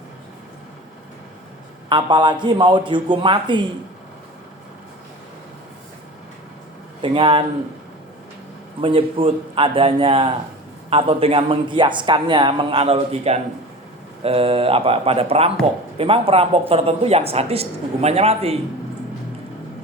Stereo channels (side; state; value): both; normal; correlation 0.35